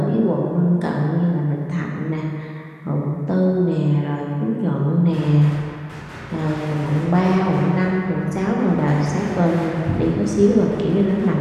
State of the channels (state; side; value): identical; both; correlation 1.00